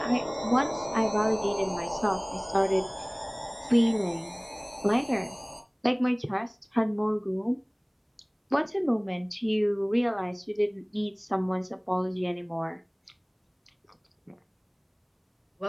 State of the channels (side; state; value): both; identical; correlation 1.00